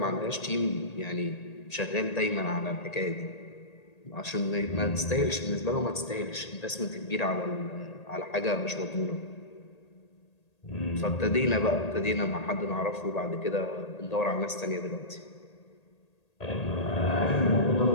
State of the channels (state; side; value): late; right; 1.8 ms